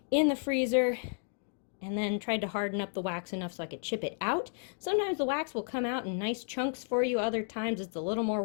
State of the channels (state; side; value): silent; right; 56 dB below the other